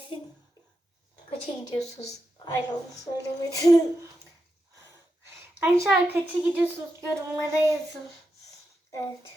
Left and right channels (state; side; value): normal; both; correlation 0.87